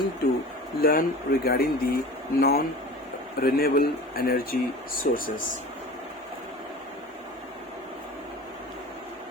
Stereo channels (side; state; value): both; normal; correlation 0.38